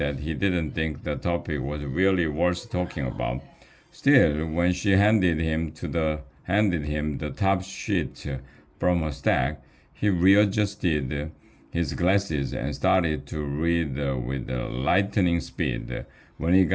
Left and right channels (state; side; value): identical; both; correlation 1.00